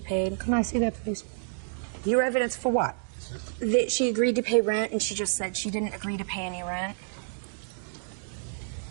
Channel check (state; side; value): silent; left; digital silence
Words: Can I see that, please? Your evidence for what? That she agreed to pay rent, and she just said she didn't agree to pay any rent.